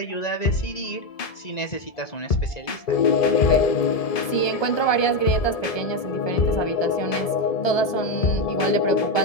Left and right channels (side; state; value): right; late; 1.2 ms